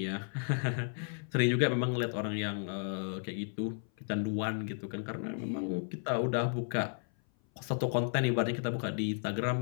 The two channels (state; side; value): silent; right; 55 dB below the other